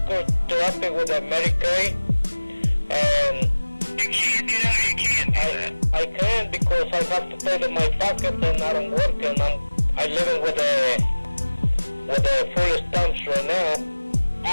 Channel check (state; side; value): inverted; both; correlation -1.00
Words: therapy with a Medicaid, and you can't do that. You can't do that. I can, because I have to pay to my pocket, and I don't work, and I'm living with a full stamps right now.